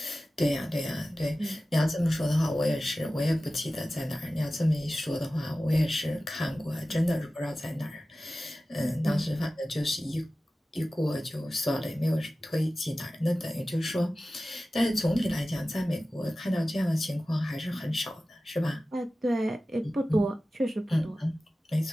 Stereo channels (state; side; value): normal; both; correlation 0.96